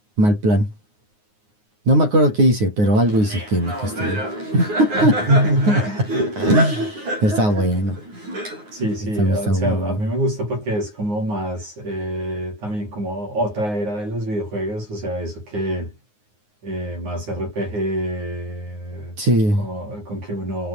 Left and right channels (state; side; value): late; left; 9.6 ms